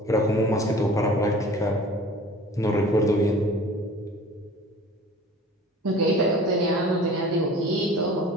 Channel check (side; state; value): both; normal; correlation 0.44